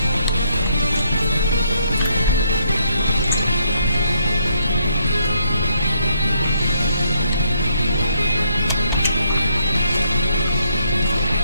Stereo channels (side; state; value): both; inverted; correlation -0.72